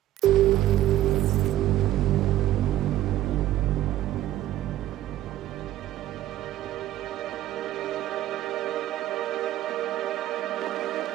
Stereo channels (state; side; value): quieter; left; 13.9 dB